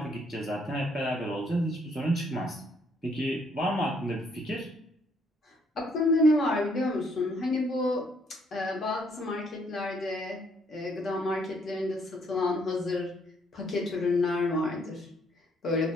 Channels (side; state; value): both; normal; correlation 0.68